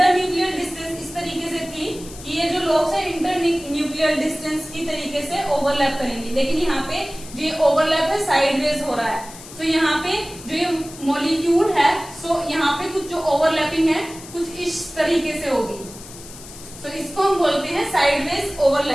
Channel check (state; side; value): noise; left; hiss, 16 dB below the sound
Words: डिस्टेंस इस तरीके से थी कि ये जो लोब्स है इंटरन्यूक्लियर डिस्टेंस की तरीके से ओवरलैप करेंगे, लेकिन यहाँ पे जो ये ओवरलैप है साइडवेज हो रहा है। सो यहाँ पे जो ये मॉलिक्यूल है, सो यहाँ पे कुछ जो ओवरलैपिंग है कुछ इस तरीके से होगी। सो इसको हम बोलते हैं साइडवेज